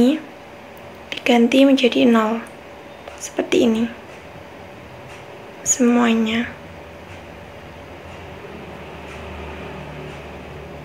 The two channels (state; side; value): identical; both; correlation 1.00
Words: diganti menjadi 0 seperti ini semuanya.